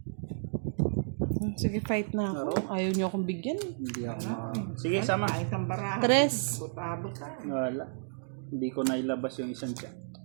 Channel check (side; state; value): left; silent; digital silence